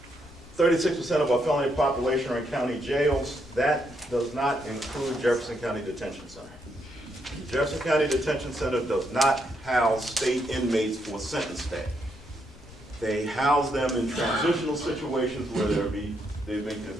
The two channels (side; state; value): left; noise; rumble, 21 dB below the sound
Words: 36% of our felony population are in county jails, that does not include Jefferson County Detention Center. Jefferson County Detention Center does not house state inmates for sentence stay. They house them in transitional situations where they've been